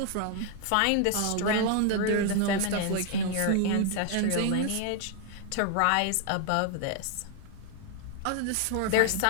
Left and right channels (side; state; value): both; different; correlation 0.00